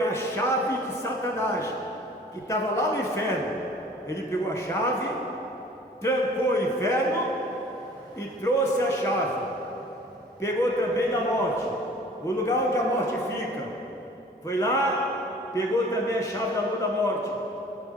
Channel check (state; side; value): normal; both; correlation 0.49